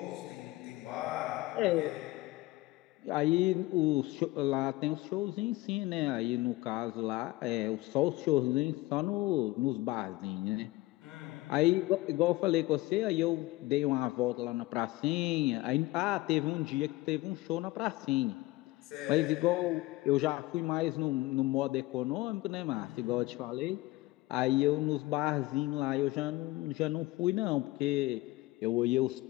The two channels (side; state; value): right; quieter; 19.3 dB